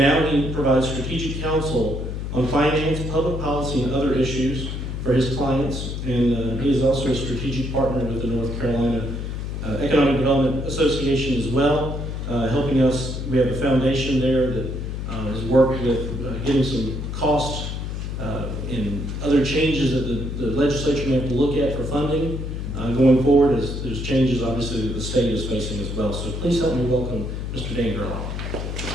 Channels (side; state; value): left; noise; hum, 5 dB below the sound